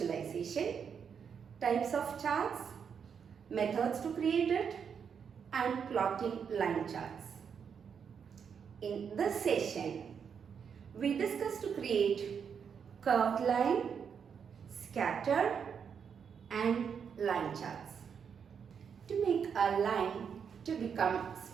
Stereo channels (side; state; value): left; quieter; 7.0 dB